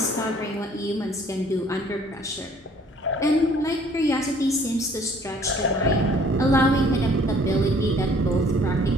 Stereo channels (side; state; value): both; normal; correlation 0.57